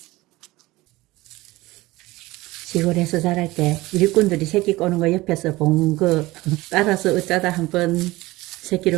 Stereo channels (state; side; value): quieter; left; 19.6 dB